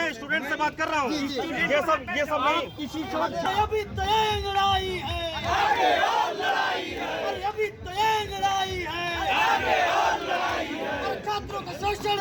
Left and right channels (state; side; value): identical; both; correlation 1.00